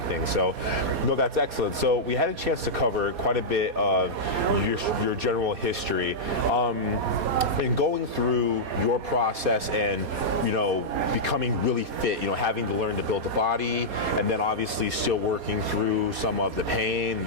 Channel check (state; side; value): late; left; 4.2 ms